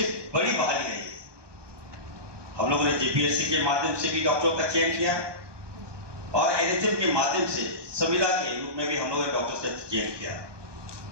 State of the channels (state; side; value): late; left; 1.2 ms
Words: बड़ी बहाली रही है। हम लोगों ने जेपीएससी के माध्यम से भी डॉक्टरों का चयन किया और एनएचएम के माध्यम से संविदा के रूप में भी हम लोगों ने डॉक्टर्स का चयन किया।